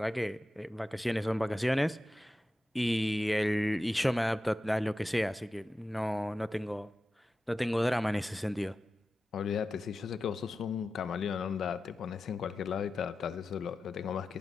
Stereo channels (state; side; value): normal; both; correlation 0.93